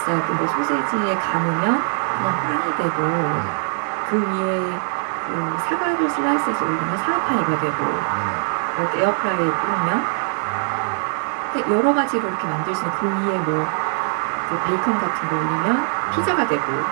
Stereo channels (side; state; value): left; silent; 59 dB below the other